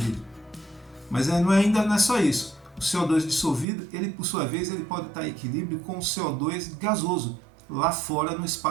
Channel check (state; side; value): drops out; left; at 3.7 s